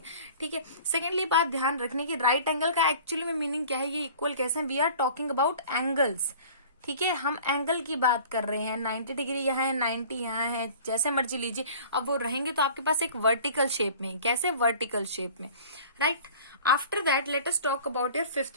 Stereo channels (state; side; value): inverted; both; correlation -0.45